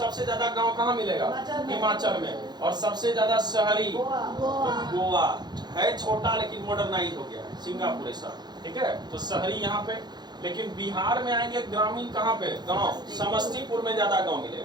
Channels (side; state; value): left; late; 0.21 ms